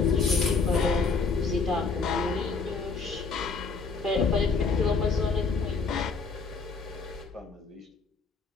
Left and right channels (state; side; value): quieter; right; 4.5 dB